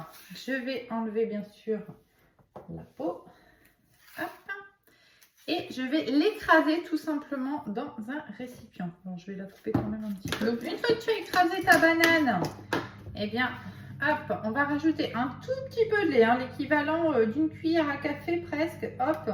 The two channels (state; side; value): identical; both; correlation 1.00